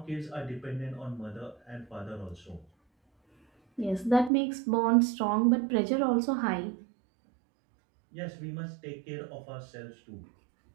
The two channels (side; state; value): left; drops out; at 4.3 s